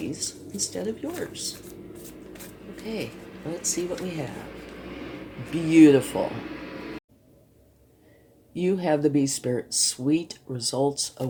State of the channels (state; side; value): identical; both; correlation 1.00